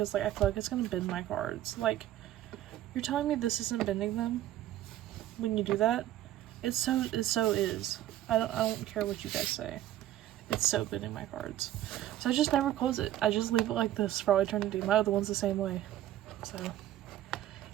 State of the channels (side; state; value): left; quieter; 13.2 dB